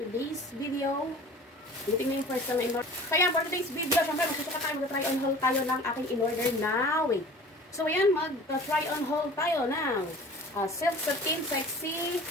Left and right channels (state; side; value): normal; both; correlation 0.43